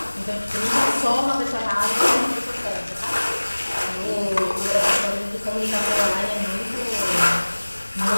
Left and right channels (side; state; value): both; inverted; correlation -1.00